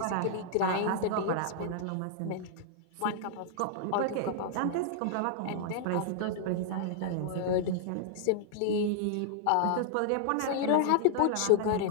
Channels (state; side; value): different; both; correlation -0.01